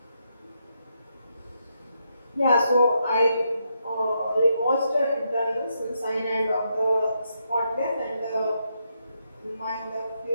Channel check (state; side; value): inverted; both; correlation -0.80